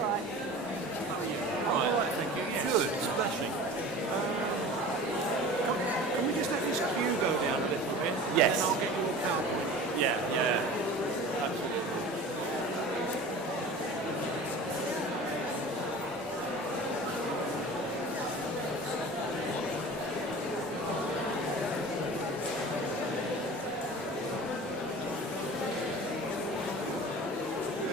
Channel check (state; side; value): normal; both; correlation 0.38